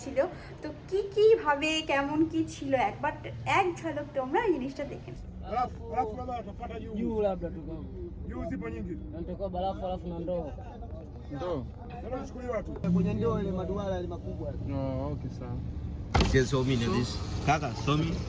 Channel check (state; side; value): identical; both; correlation 1.00